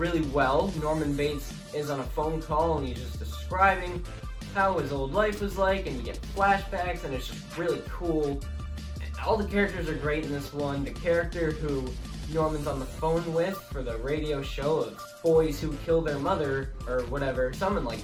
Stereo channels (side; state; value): both; identical; correlation 1.00